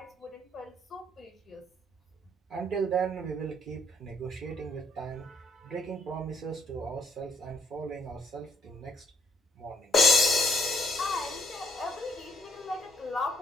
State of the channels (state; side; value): normal; both; correlation 0.69